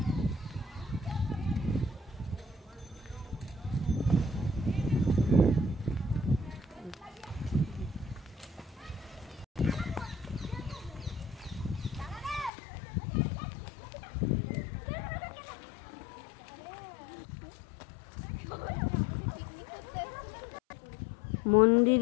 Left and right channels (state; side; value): drops out; right; at 12.5 s